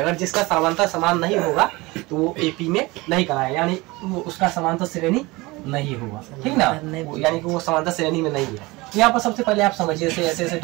जिसका सर्वांतर समान नहीं होगा तो वो एपी में नहीं कराएगा, यानी वो उसका समांतर श्रेणी नहीं होगा, ठीक ना, यानी कि वो समांतर श्रेणी में नहीं है। यहाँ पर सबसे पहले आप समझिए, ऐसे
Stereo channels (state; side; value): quieter; left; 22.5 dB